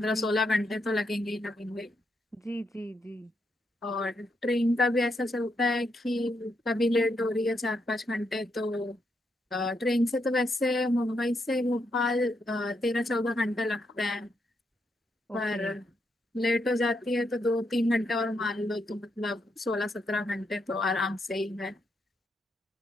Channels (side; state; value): both; normal; correlation 0.80